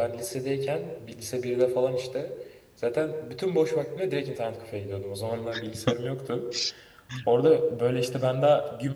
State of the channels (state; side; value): identical; both; correlation 1.00